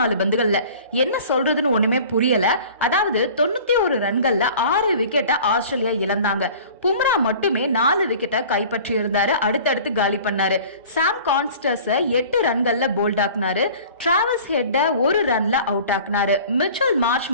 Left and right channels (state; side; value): inverted; both; correlation -0.45